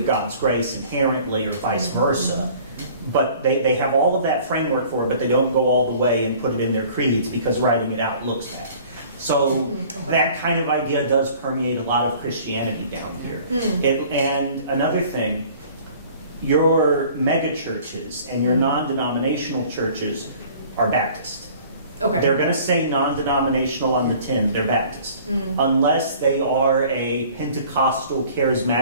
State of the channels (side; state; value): both; inverted; correlation -0.50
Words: God's grace inherently or vice versa. But they have all of that framework for it, but they don't go all the way and put it in their creeds because writing it out looks bad. So that kind of idea does permeate a lot of Christianity down here. And another thing, your mega churches and your non-denominational churches are Baptist. Okay. They're going to say non-denominational on the tin, they're Baptist. Unless they are a Pentecostal